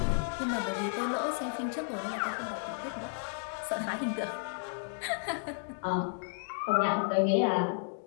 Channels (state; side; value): silent; right; 56 dB below the other